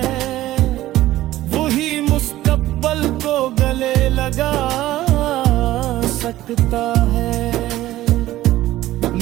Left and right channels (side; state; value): left; quieter; 15.3 dB